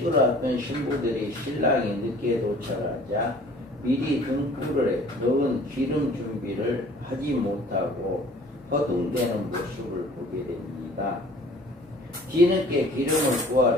앞둔 신부들이 신랑이 늦게 도착하자 미리 등불에 넣은 기름 준비를 하지 못하고 허둥대는 모습을 보게 됩니다. 뒤늦게 기름을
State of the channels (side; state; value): both; normal; correlation 0.50